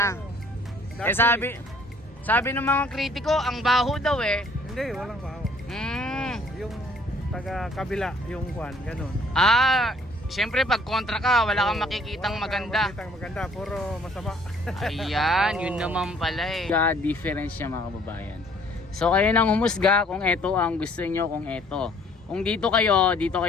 Eh sabi ng mga kritiko, ang baho daw eh. Hindi, walang bahaw. Yung taga kabila, yung kwan, ganun. Siyempre pag kontra ka, wala kang makikitang maganda. Makikitang maganda, puro masama. Ayan, yun naman pala eh. Difference niya mga kababayan. So kayo nang humusga kung ito ang gusto nyo, kung ito. Kung dito kayo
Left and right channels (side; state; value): both; normal; correlation 0.58